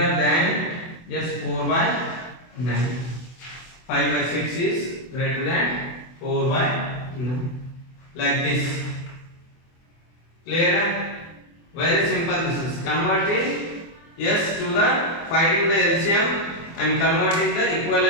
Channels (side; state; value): right; late; 24 ms